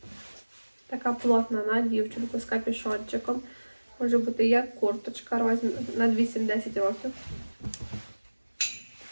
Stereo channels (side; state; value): both; inverted; correlation -1.00